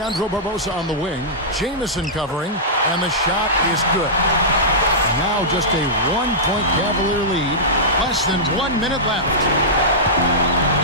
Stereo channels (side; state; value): both; normal; correlation -0.15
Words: Barbosa on the wing. Jamison covering. And the shot is good. Now just a 1-point Cavalier lead. Less than 1 minute left.